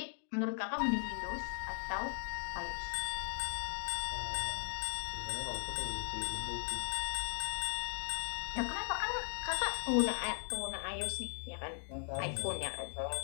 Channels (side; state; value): right; silent; 52 dB below the other